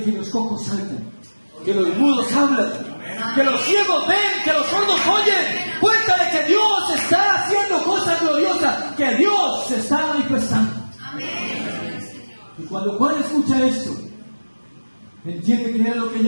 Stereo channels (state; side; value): inverted; both; correlation -1.00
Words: que los cojos saltan, que los mudos hablan, que los ciegos ven, que los sordos oyen. Cuéntale que Dios está haciendo cosas gloriosas, que Dios se está manifestando. Y cuando Juan escucha esto, entiende que era lo que